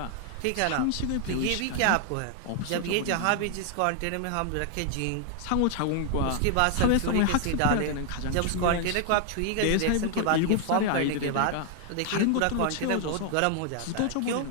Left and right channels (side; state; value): both; different; correlation 0.00